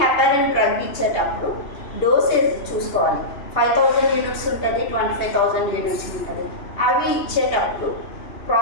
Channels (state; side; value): late; right; 2.9 ms